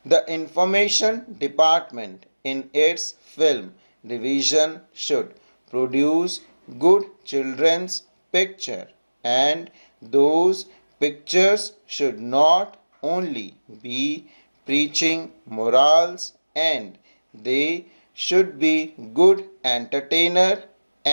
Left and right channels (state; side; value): inverted; both; correlation -1.00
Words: The information department in its film division should produce good children's picture, and those pictures should not only be preaching morals, and they should be good entertainer,